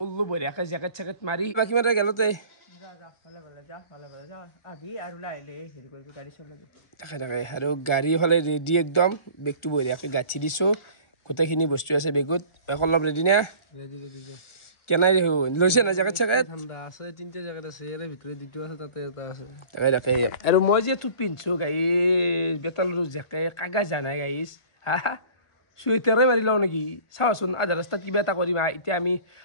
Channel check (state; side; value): late; right; 1.4 ms